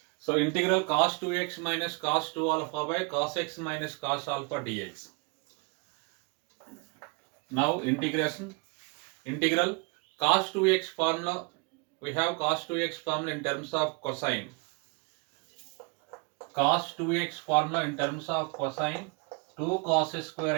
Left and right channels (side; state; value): left; quieter; 31.3 dB